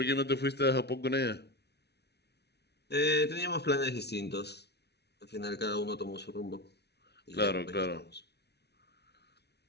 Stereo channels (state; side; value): late; right; 0.49 ms